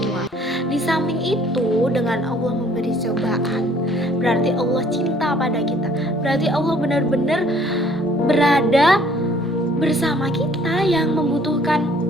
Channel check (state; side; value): normal; both; correlation 0.59